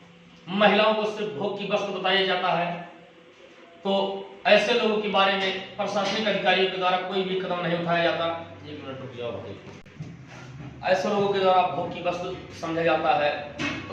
महिलाओं को सिर्फ भोग की वस्तु बताया जाता है। तो ऐसे लोगों के बारे में प्रशासनिक अधिकारियों के द्वारा कोई भी कदम नहीं उठाया जाता। एक मिनट रुक जाओ। ऐसे लोगों के द्वारा भोग की वस्तु समझा जाता है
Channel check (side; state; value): both; identical; correlation 1.00